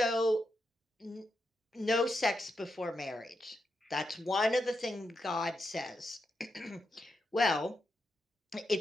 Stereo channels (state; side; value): normal; both; correlation 0.85